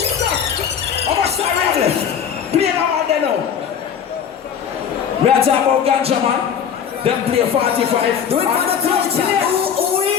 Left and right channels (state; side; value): quieter; right; 7.9 dB